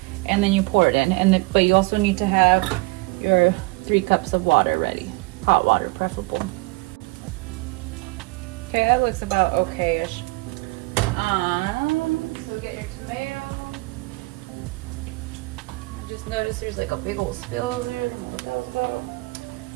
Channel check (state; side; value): quieter; left; 24.8 dB